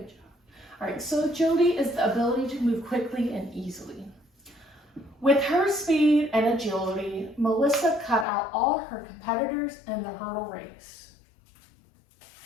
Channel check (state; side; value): drops out; right; at 8.2 s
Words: job. All right, so agility is the ability to move quickly and easily. With her speed and agility, Melissa cut out all her competitors in the hurdle race.